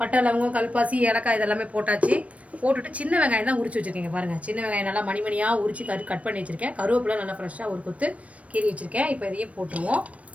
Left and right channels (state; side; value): late; left; 0.065 ms